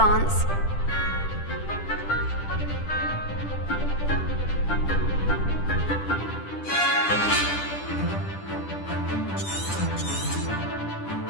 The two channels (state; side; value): late; right; 10 ms